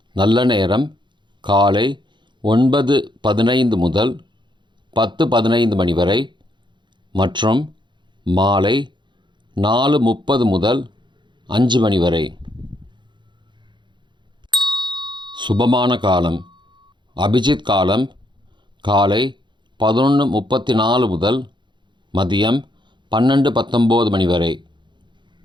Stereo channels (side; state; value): left; late; 0.23 ms